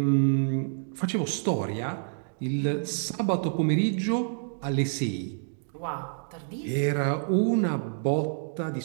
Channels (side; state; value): left; silent; digital silence